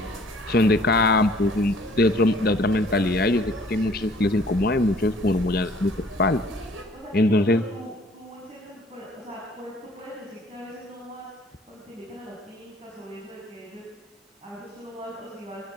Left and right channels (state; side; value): normal; both; correlation 0.55